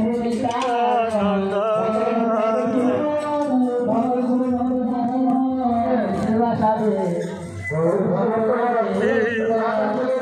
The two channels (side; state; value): both; identical; correlation 1.00